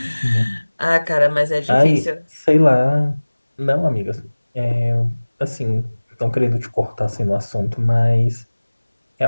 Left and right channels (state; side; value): inverted; both; correlation -1.00